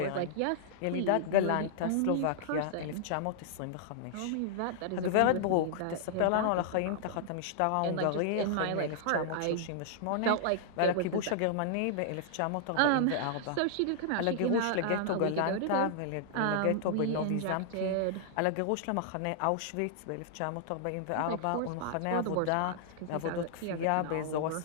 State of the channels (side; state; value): both; different; correlation -0.01